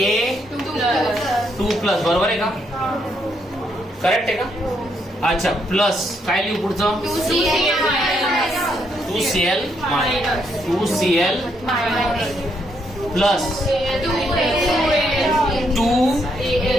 बरोबर आहे का. करेक्ट आहे का. अच्छा प्लस काय लिहू पुढचं. 2Cl प्लस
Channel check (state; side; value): normal; both; correlation 0.75